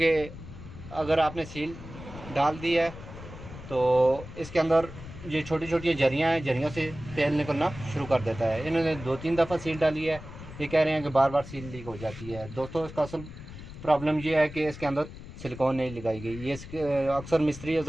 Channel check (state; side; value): noise; left; rumble, 13 dB below the sound